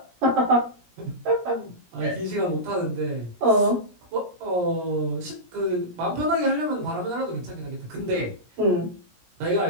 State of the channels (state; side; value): late; left; 17 ms